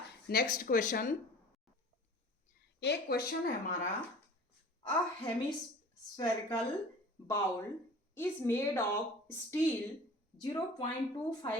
नेक्स्ट क्वेश्चन। एक क्वेश्चन है हमारा, a hemispherical bowl is made of steel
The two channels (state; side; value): normal; both; correlation 0.43